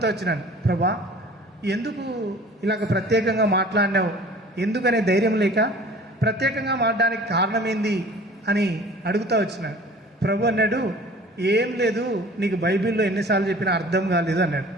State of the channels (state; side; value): normal; both; correlation 0.46